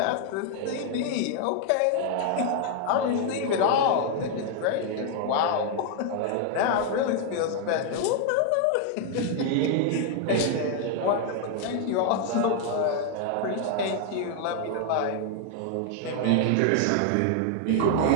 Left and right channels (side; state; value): both; different; correlation 0.00